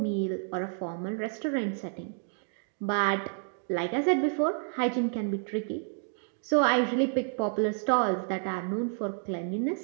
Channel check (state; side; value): silent; left; 58 dB below the other